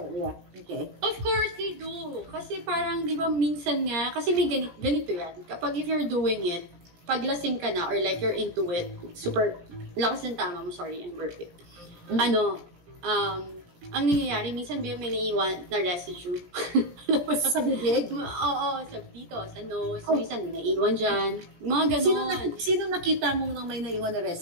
Okay. Of course they do. Kasi parang, di ba, minsan nga, kasi may ganito yan. Kapag if you're doing it, paglasing ka na or like you're into it, super, lakas ng tama mo, sorry, I'm burping. Ang nangyayari, minsan may naiiwan na residue. Sa bibig? Oo, dito, sa nose. Minsan naiiwan dyan. Mga ganon. Sino nakita mo nang may naiwan na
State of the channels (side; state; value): left; late; 17 ms